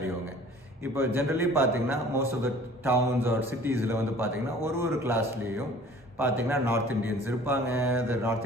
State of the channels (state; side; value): normal; both; correlation 0.49